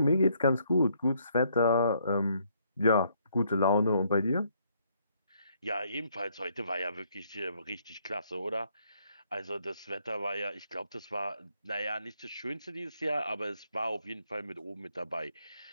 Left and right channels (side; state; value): both; inverted; correlation -0.70